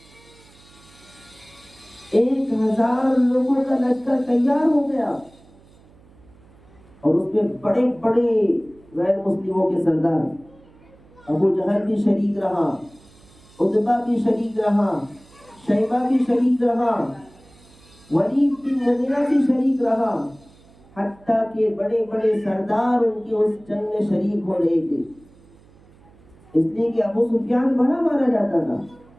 1000 لوگوں کا لشکر تیار ہو گیا، اور اس میں بڑے بڑے غیر مسلموں کے سردار، ابو جہل بھی شریک رہا، عتبہ بھی شریک رہا، شیبہ بھی شریک رہا، ولید بن مغیرہ بھی شریک رہا، حتیٰ کہ بڑے بڑے سردار ان کے اس جنگ میں شریک ہو رہے تھے. اس لیے کہ ابو سفیان بڑا مانا جاتا تھا،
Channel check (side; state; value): right; noise; hum, 27 dB below the sound